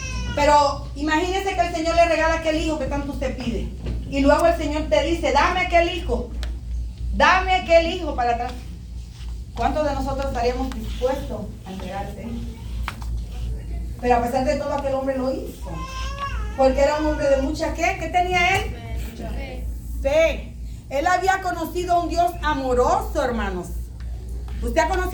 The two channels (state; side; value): identical; both; correlation 1.00